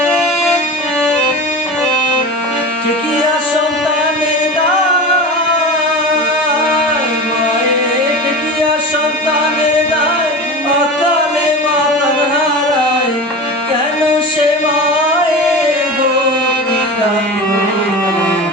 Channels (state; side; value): normal; both; correlation 0.30